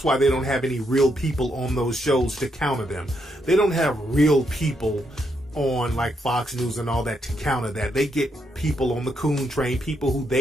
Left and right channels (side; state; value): both; normal; correlation 0.78